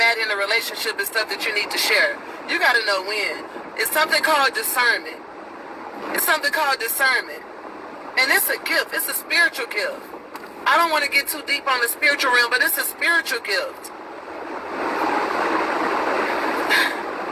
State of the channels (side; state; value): both; identical; correlation 1.00